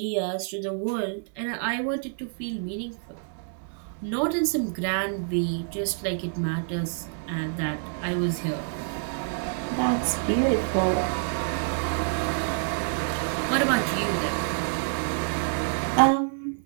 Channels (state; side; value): silent; left; 57 dB below the other